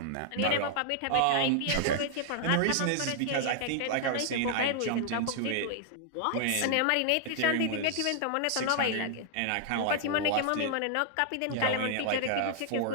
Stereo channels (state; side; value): different; both; correlation 0.00